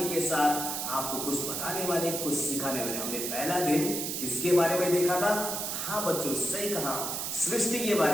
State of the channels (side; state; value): right; noise; hiss, 3 dB below the sound